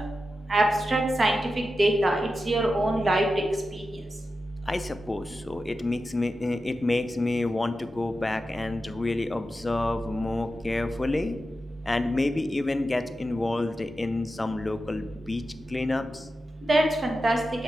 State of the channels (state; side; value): normal; both; correlation 0.91